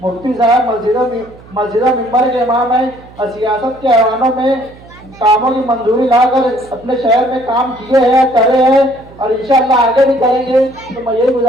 मुफ्ती साहब मस्जिदों मिंबर के इमाम है, और सियासत के ऐवानों में कामों की मंजूरी लाकर अपने शहर में काम किए हैं, करे हैं, और इंशाअल्लाह आगे भी करेंगे। तो मैं यही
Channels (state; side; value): noise; right; hum, 22 dB below the sound